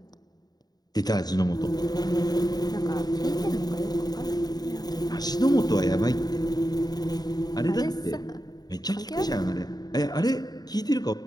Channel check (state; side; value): late; right; 0.19 ms